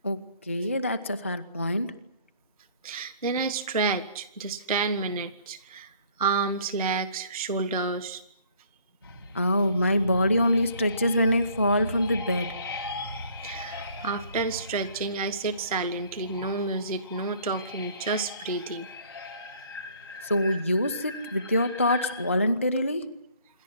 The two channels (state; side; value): inverted; both; correlation -0.57